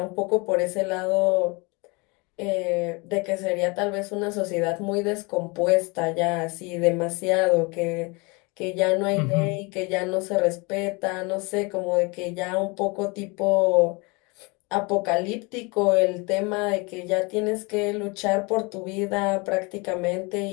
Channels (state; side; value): quieter; right; 28.3 dB